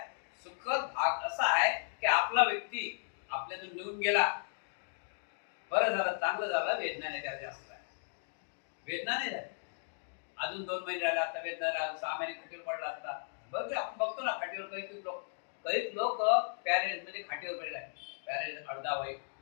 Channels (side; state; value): right; silent; digital silence